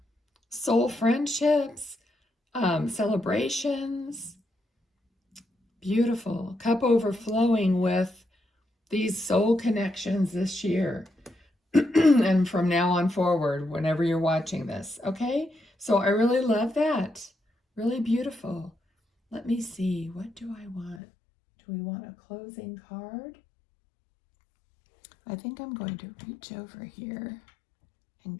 Soul friendships, celebrations. Beautiful. Cup overflowing with these soul connections this year. And from now on forward, whenever you're watching this. Okay? So I really love that. Really beautiful. Let me see. What do I want? Do we want a closing card? I think I'm going to reach over here and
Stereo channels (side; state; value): right; drops out; at 21.0 s